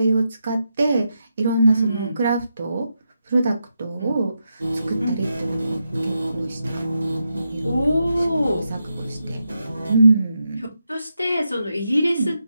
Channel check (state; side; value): inverted; both; correlation -0.86